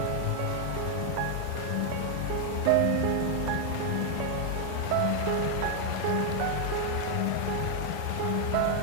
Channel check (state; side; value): different; both; correlation 0.00